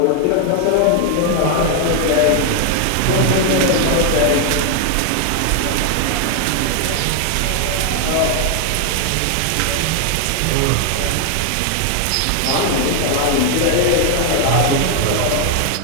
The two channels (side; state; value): both; different; correlation 0.00